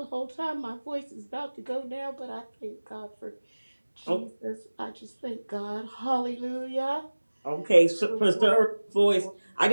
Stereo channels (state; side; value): inverted; both; correlation -1.00